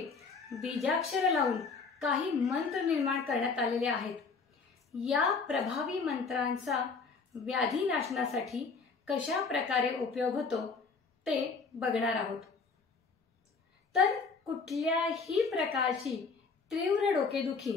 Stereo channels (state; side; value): quieter; right; 4.7 dB